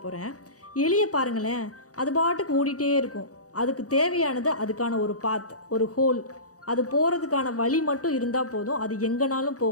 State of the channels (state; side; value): late; right; 0.66 ms